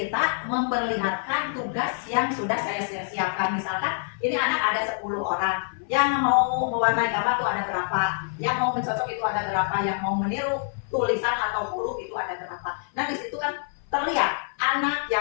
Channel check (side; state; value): right; silent; 57 dB below the other